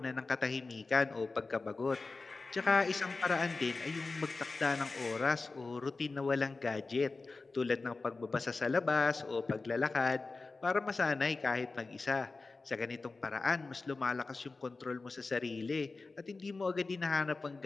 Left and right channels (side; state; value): right; quieter; 3.8 dB